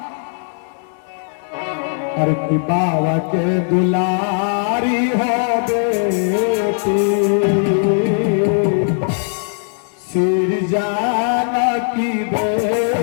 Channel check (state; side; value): silent; right; 62 dB below the other